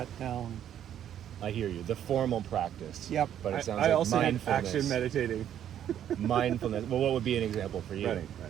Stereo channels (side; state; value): left; quieter; 10.3 dB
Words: down. I hear you. The formal practice. Yep. But it sounds I like also had mindfulness. action meditating. Mindfulness. Well, what would be an example for you?